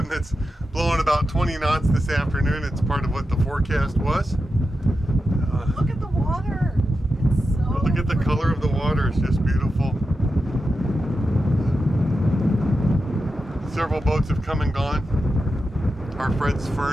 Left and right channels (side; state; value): both; normal; correlation 0.90